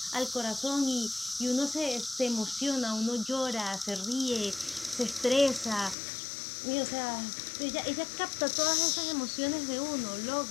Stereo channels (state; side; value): drops out; right; at 6.0 s